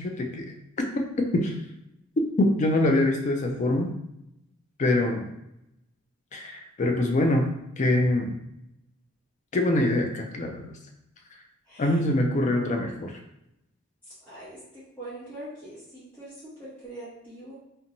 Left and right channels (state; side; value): normal; both; correlation 0.63